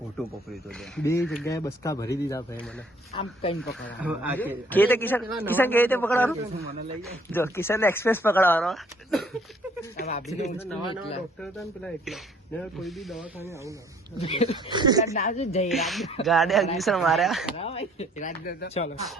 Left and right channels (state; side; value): normal; both; correlation 0.60